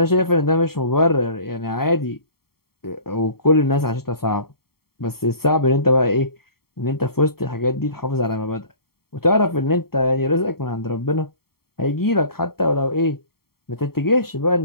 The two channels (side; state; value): right; late; 0.94 ms